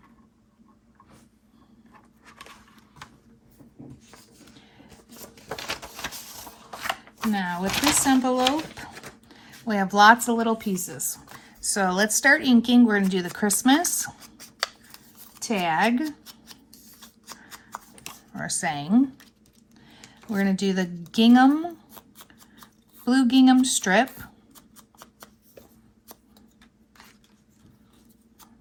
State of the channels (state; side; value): identical; both; correlation 1.00